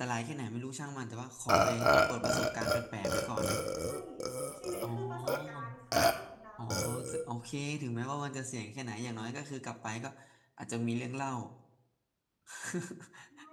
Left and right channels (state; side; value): identical; both; correlation 1.00